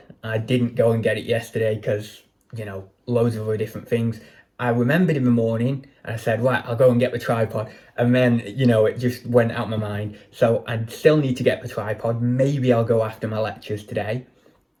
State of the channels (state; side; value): identical; both; correlation 1.00